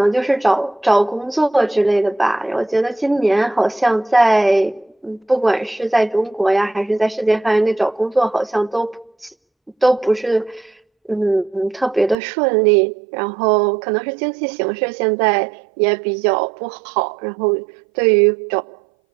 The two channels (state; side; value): drops out; left; at 12.2 s